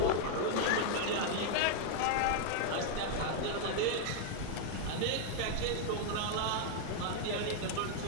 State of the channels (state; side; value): different; both; correlation 0.00